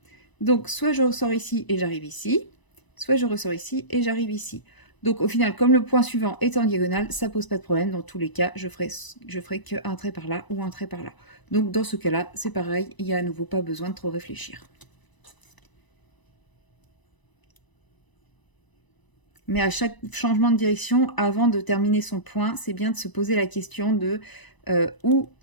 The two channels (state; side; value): late; right; 1.0 ms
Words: Donc, soit je ressors ici et j'arrive ici, soit je ressors ici et j'arrive ici. Donc, au final, comme le point suivant est en diagonale, ça pose pas de problème. Dans tous les cas, je ferai qu'un trait par là ou un trait par là. Donc, dans ce cas-là, c'est pareil. Il n'y a à nouveau pas besoin de trop réfléchir. Mais à chaque changement de direction, avant de terminer son point, c'est bien de se poser la question de où